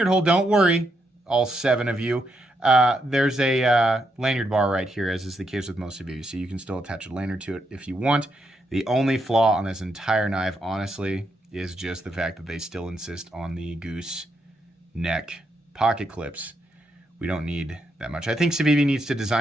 hole? Don't worry, all 7 of you. There's a lanyard bar right here, as is the case with most of you. So you can still attach a lanyard to it if you want. The only flaw on this entire knife, honestly, is just the fact that they still insist on the goose neck pocket clips. We don't need that much. I think Civivi needs to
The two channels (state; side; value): normal; both; correlation 0.80